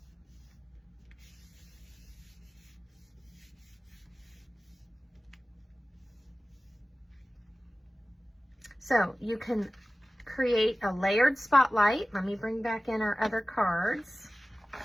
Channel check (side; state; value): both; normal; correlation 0.96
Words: So you can create a layered spotlight. Let me bring back in our other cards.